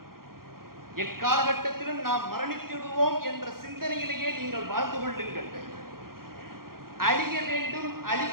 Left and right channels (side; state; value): left; late; 0.92 ms